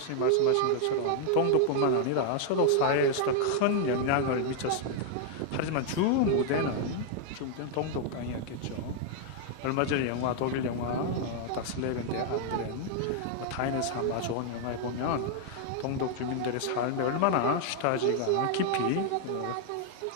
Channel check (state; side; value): different; both; correlation 0.00